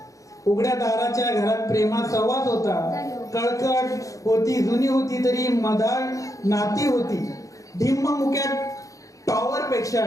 उघड्या दाराच्या घरात प्रेमात सहवास होता. कळकट होती, जुनी होती तरी मधाळ नाती होती. ढिम्म मुक्यात टॉवर पेक्षा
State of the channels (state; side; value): late; right; 0.16 ms